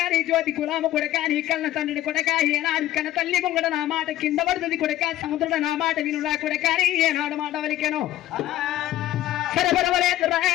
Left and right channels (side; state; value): right; quieter; 13.8 dB